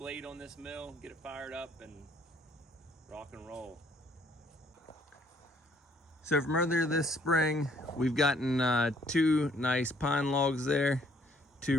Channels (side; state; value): both; normal; correlation 0.64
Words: on this mill, get it fired up, and rock and roll. So from earlier this spring, we've gotten 2 nice pine logs there,